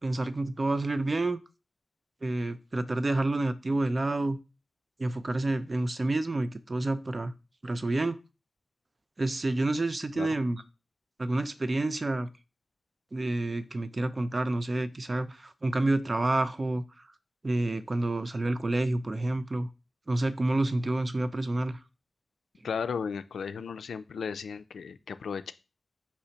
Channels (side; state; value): both; normal; correlation 0.97